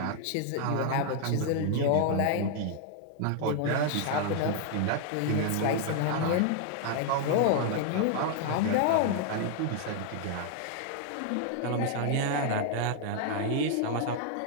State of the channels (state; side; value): different; both; correlation 0.00